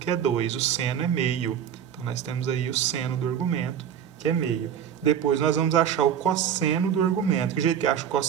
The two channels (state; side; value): quieter; left; 8.9 dB